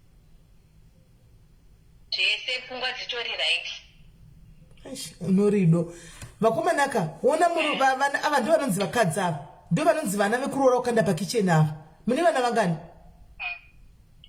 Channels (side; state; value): both; identical; correlation 1.00